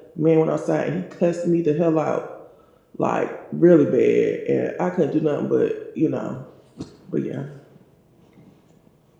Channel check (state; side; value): identical; both; correlation 1.00